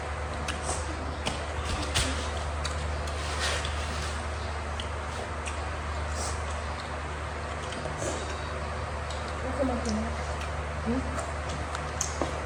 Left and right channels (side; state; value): both; identical; correlation 1.00